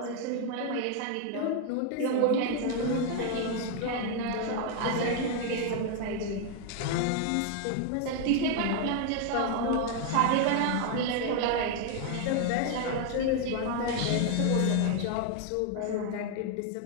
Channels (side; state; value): both; different; correlation 0.01